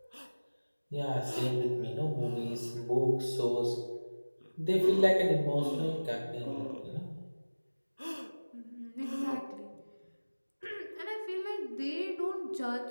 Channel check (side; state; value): both; inverted; correlation -1.00